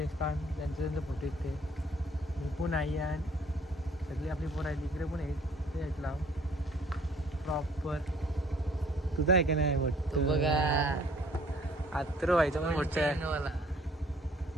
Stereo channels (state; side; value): normal; both; correlation 0.58